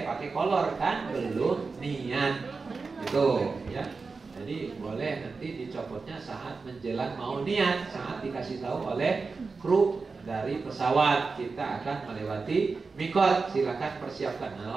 pakai kolor kan, belum niat gitu ya. Jadi boleh nanti dicopotnya saat menjelang mau niat, saat dikasih tahu oleh kru dari pesawat kita akan melewati mikot, silakan persiapkan.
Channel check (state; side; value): quieter; left; 4.4 dB